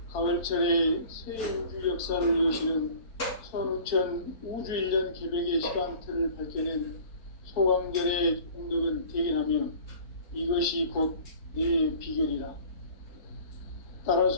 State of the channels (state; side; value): late; right; 4.5 ms